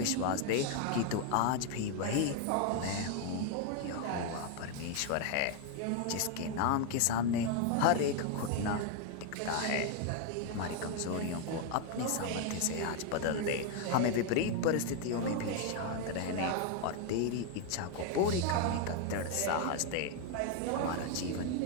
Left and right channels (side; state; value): both; different; correlation 0.01